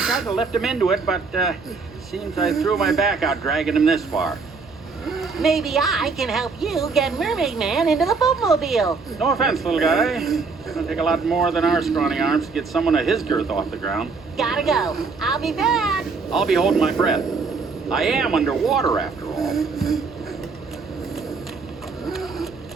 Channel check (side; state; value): left; quieter; 4.6 dB